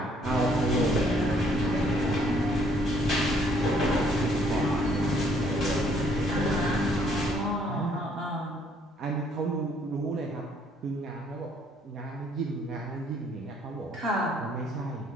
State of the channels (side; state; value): both; normal; correlation 0.65